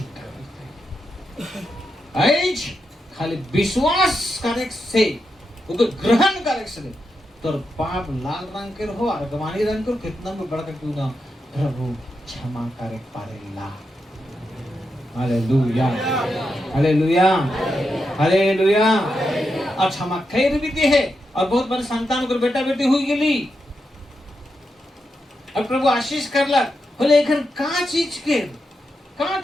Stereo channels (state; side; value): normal; both; correlation 0.86